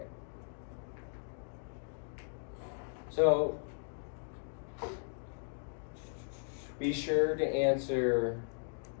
So be sure to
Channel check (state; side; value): silent; right; digital silence